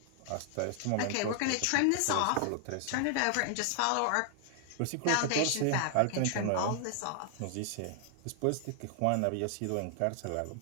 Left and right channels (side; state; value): both; different; correlation 0.00